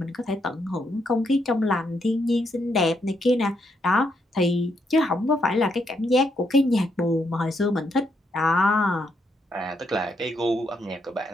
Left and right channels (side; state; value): both; normal; correlation 0.77